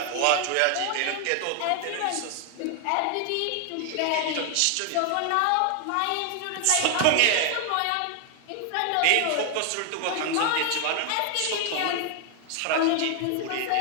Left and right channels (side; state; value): both; different; correlation 0.00